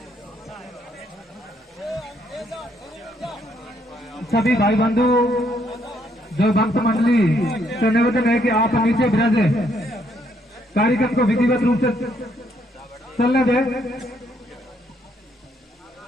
सभी भाई बंधु, जो भक्त मंडली से निवेदन है कि आप नीचे विराजे, कार्यक्रम को विधिवत रूप से चलने दें।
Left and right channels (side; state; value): both; normal; correlation 0.71